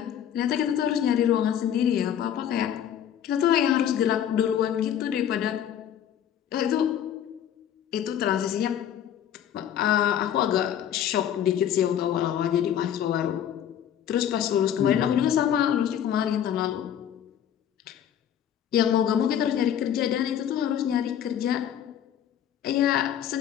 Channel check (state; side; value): quieter; right; 9.8 dB